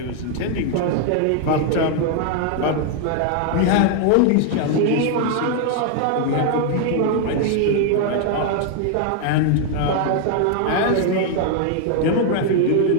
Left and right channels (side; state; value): both; different; correlation 0.00